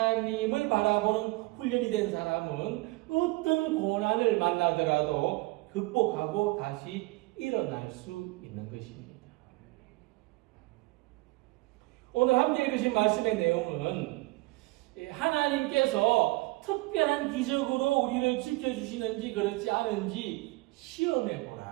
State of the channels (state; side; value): quieter; left; 22.8 dB